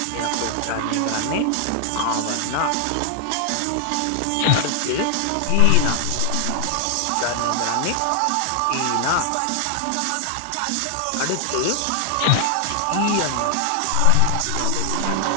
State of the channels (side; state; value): both; different; correlation 0.00